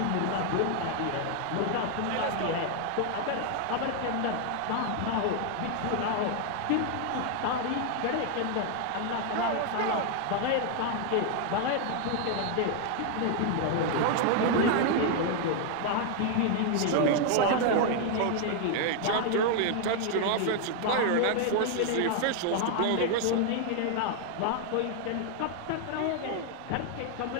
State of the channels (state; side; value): different; both; correlation 0.00